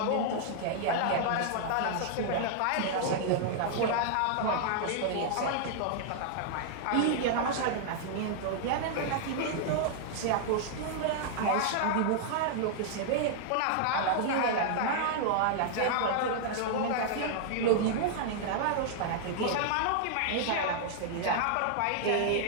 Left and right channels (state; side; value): different; both; correlation -0.01